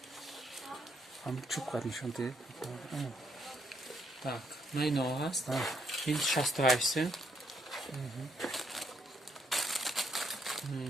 Ҳам чӯб қад нишон дед. Так, ма ино ҳаст. ин 68 сум.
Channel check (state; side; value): normal; both; correlation 0.73